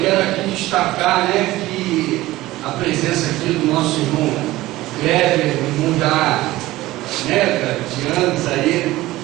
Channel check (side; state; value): left; quieter; 17.3 dB